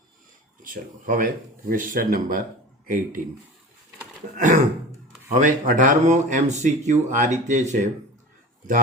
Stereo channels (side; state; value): both; normal; correlation 0.36